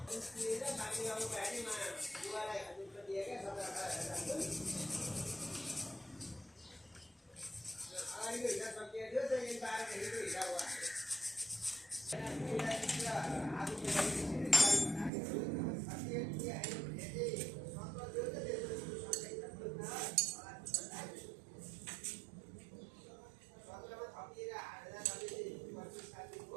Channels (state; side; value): drops out; left; at 15.1 s